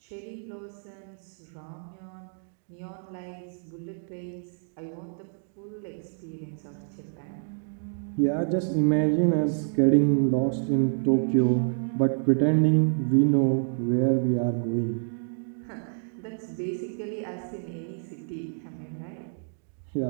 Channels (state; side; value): silent; left; digital silence